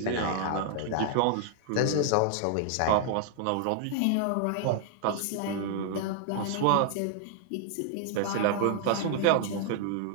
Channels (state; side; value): different; both; correlation 0.00